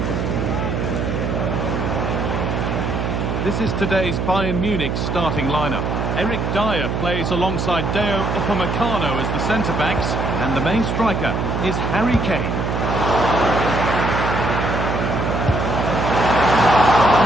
This is today's Bayern Munich starting lineup. Eric Dyer plays alongside Deo Upamecano as the centre-backs, and the main striker is Harry Kane.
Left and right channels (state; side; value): noise; right; hum, 1 dB below the sound